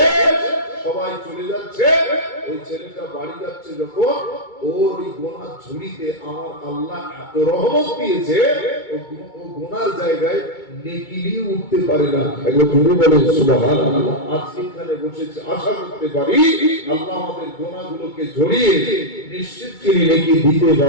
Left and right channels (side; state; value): right; late; 2.2 ms